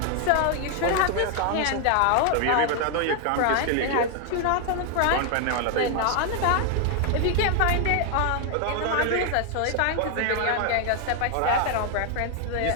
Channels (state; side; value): different; both; correlation 0.00